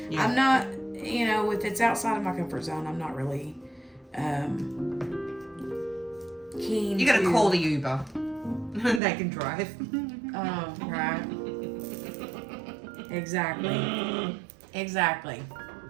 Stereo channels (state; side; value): drops out; left; at 9.0 s